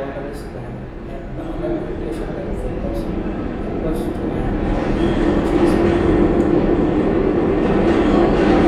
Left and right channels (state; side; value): identical; both; correlation 1.00